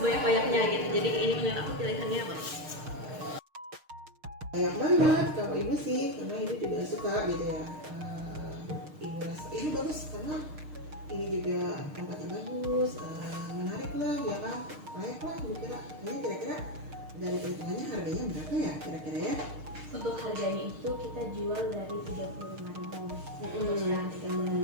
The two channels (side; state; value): left; late; 6.5 ms